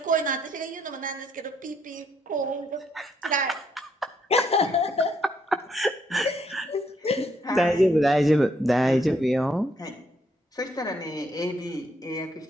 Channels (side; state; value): both; normal; correlation 0.72